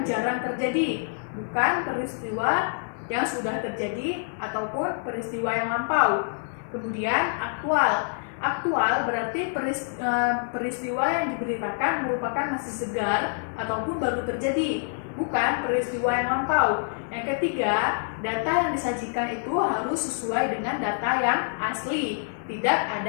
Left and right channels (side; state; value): right; silent; digital silence